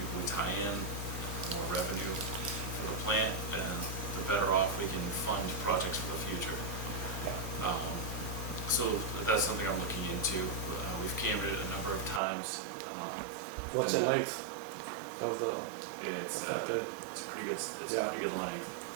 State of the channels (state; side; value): drops out; left; at 12.2 s